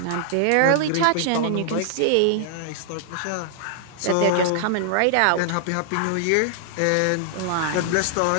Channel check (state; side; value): different; both; correlation -0.01